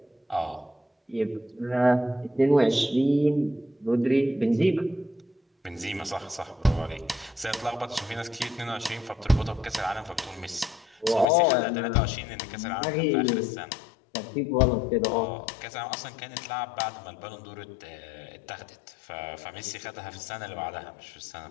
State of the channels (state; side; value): drops out; right; at 11.2 s